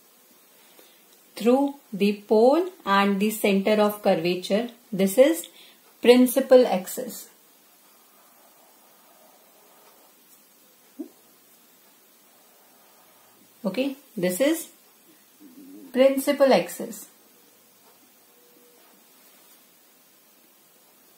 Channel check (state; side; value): identical; both; correlation 1.00